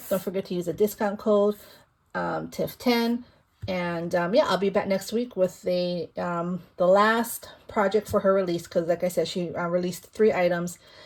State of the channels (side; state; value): both; identical; correlation 1.00